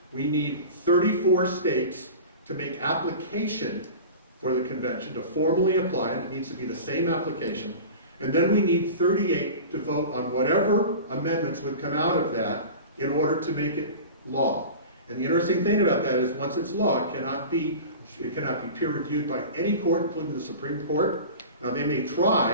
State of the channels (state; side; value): inverted; both; correlation -0.35